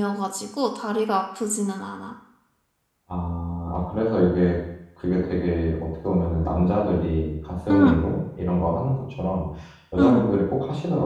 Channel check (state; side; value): identical; both; correlation 1.00